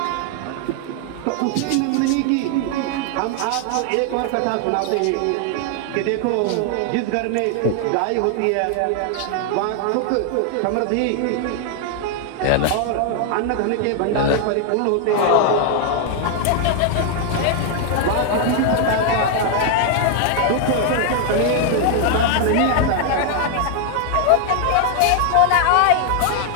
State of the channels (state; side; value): different; both; correlation 0.00